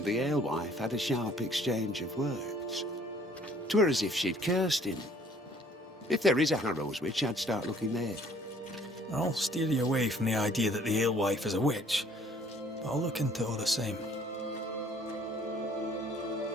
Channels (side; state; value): both; normal; correlation 0.58